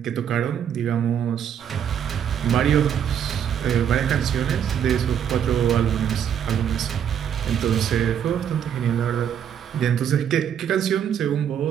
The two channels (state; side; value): quieter; left; 8.9 dB